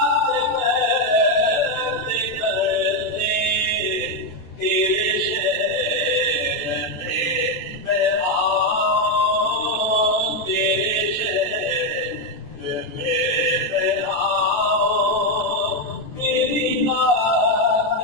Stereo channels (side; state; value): right; late; 14 ms